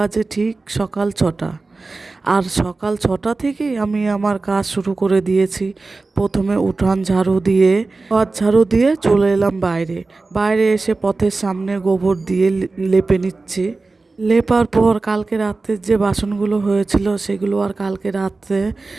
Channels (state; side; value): quieter; left; 3.6 dB